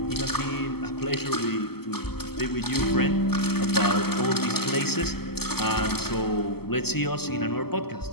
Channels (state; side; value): late; right; 0.96 ms